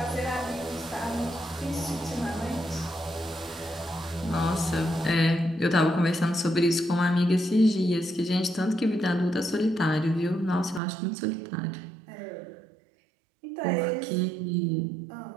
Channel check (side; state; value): left; drops out; at 10.8 s